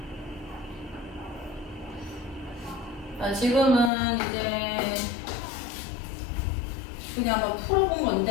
자, 지금은 이제 그냥 한번 풀어본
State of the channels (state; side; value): drops out; right; at 3.9 s